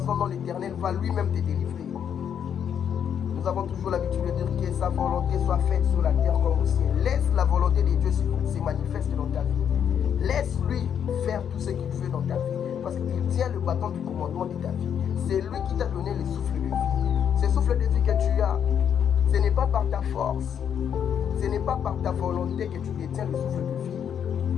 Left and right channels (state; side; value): quieter; right; 8.4 dB